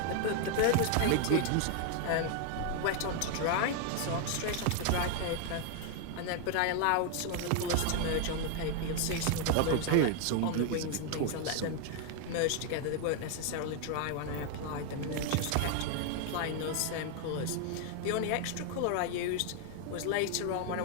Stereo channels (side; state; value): both; different; correlation 0.00